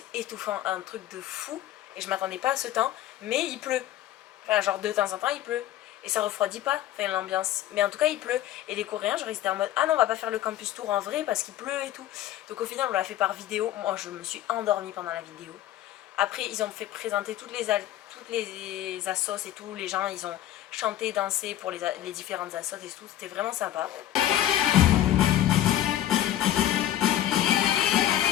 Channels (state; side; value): quieter; right; 12.7 dB